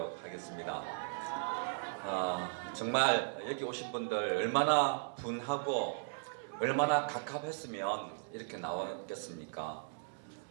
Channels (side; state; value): left; silent; digital silence